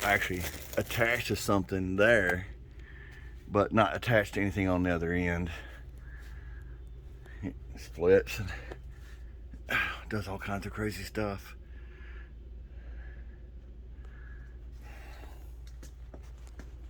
actually attached to something there, but not attached to anything on the other end. It splits and does all kinds of crazy stuff.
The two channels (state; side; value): identical; both; correlation 1.00